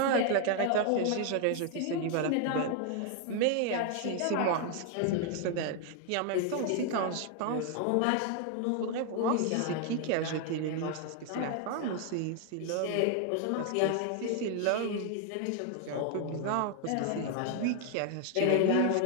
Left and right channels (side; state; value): both; different; correlation 0.00